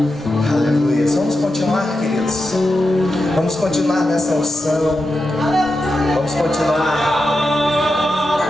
Aleluias. Vamos continuar, queridos. Vamos continuar nessa unção. Vamos continuar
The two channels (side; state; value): both; normal; correlation 0.89